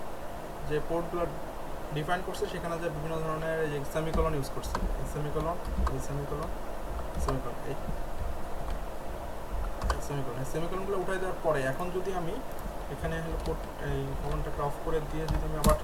যে পোর্টগুলো ডিফাইন করছি সেখানে যে বিভিন্ন ধরনের এই সেমিকলন ইউজ করছি, এই সেমিকলন, এই সেমিকলন, সেমিকলন, এই সেমিকলন, এই সেমিকলনগুলো উঠাই দেওয়ার পরে এখন যদি আমি এখানে হলো পোর্ট এই কমান্ডটাকে অফ করে দিয়ে যদি আমি আবার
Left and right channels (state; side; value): identical; both; correlation 1.00